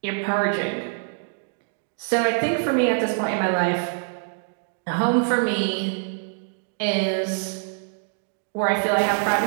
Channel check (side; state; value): left; silent; digital silence